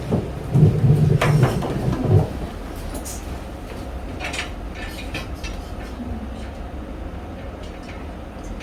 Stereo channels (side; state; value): both; identical; correlation 1.00